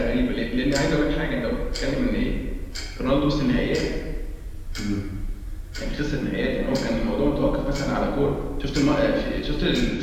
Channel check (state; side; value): identical; both; correlation 1.00